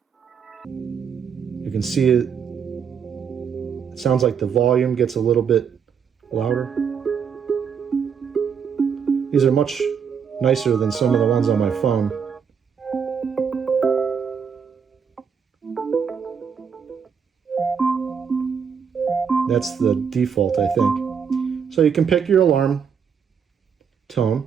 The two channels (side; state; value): left; quieter; 6.9 dB